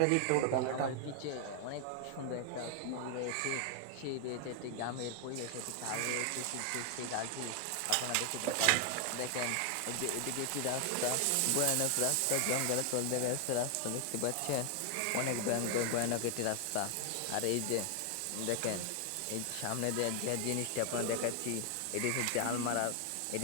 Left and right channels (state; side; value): different; both; correlation 0.00